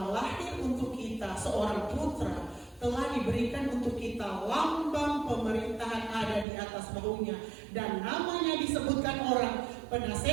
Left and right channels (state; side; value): drops out; left; at 6.5 s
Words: lahir untuk kita, seorang putra telah diberikan untuk kita, lambang pemerintahan ada di atas bahunya, dan namanya disebutkan orang